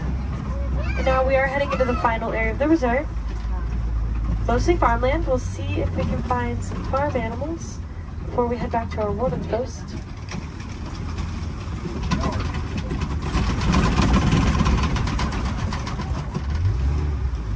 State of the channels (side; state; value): both; identical; correlation 1.00